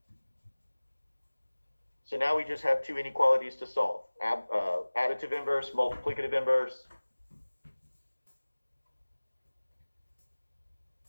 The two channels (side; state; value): both; inverted; correlation -1.00